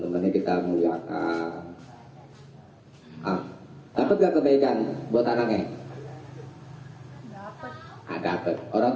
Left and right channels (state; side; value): identical; both; correlation 1.00